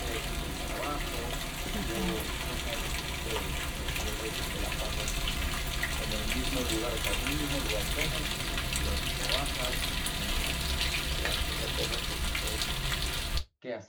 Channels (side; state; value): both; identical; correlation 1.00